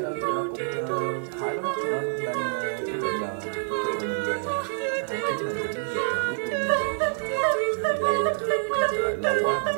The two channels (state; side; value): silent; left; digital silence